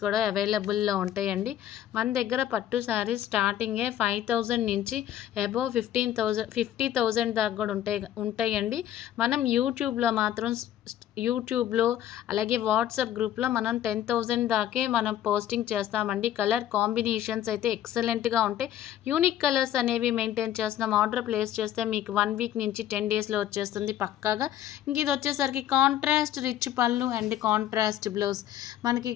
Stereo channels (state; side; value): quieter; right; 11.6 dB